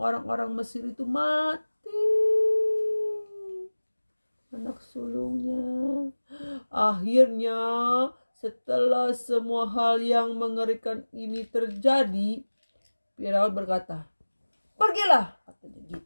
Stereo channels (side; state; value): both; inverted; correlation -1.00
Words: Mesir itu mati. Anak sulungnya. Akhirnya setelah semua hal yang mengerikan ini terjadi, Firaun berkata, "Pergilah," katanya